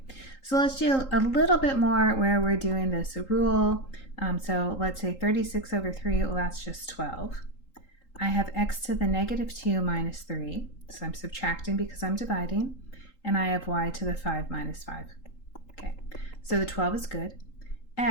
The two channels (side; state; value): right; late; 3.8 ms